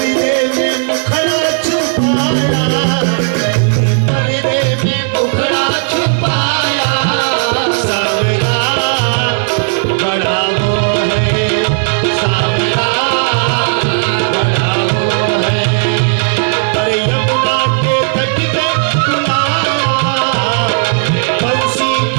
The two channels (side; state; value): left; silent; 67 dB below the other